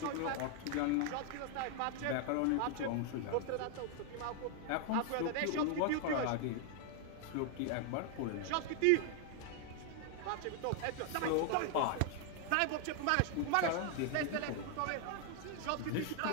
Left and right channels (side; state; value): both; different; correlation 0.00